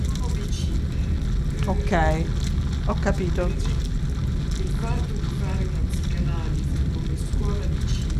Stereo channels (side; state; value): both; identical; correlation 1.00